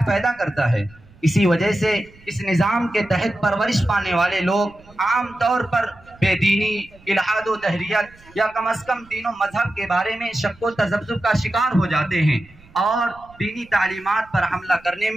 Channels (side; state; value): right; noise; rumble, 26 dB below the sound